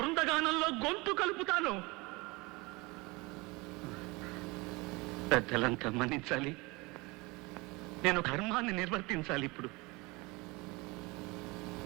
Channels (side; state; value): left; quieter; 24.6 dB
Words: గొంతు కలుపుతాను. పెద్దలంతా మన్నించాలి. నేను ధర్మాన్ని నిర్వర్తించాలి. ఇప్పుడు